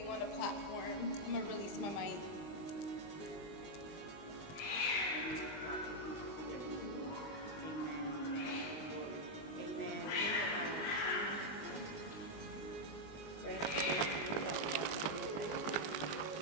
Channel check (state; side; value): late; right; 20 ms